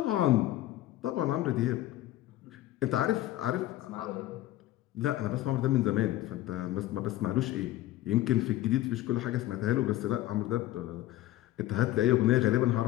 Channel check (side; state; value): right; quieter; 15.1 dB